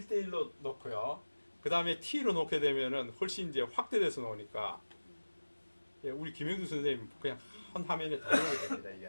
놓고요. 그 다음에 T로 놓게 되면은 훨씬 이제 확대돼서 나오니까 예, 우리 김영수 선생님 그냥 한 화면에 다 넣어야 됩니다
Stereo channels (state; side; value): inverted; both; correlation -1.00